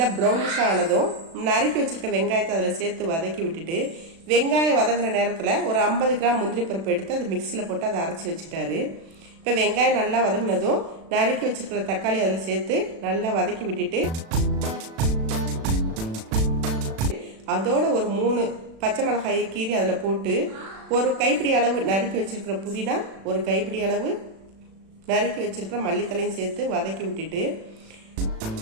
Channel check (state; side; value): late; left; 36 ms